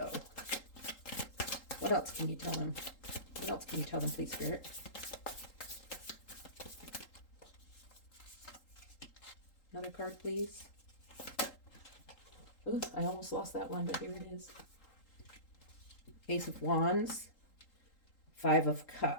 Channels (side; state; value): right; late; 3.8 ms